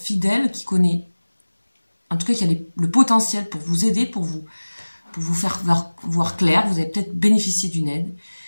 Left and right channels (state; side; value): inverted; both; correlation -1.00